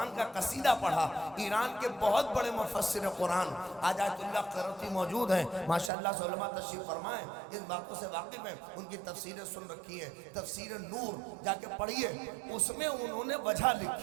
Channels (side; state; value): left; drops out; at 5.9 s